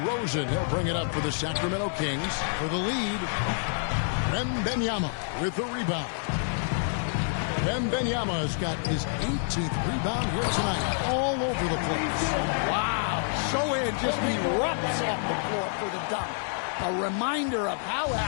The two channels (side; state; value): right; silent; 59 dB below the other